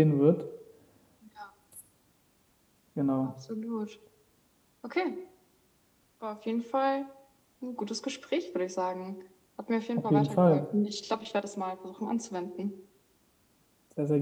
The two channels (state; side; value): identical; both; correlation 1.00